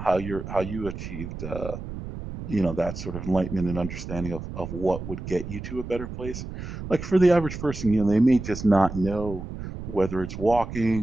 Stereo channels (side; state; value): right; noise; rumble, 9 dB below the sound